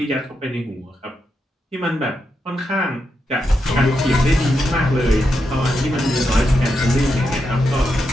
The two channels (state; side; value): normal; both; correlation 0.84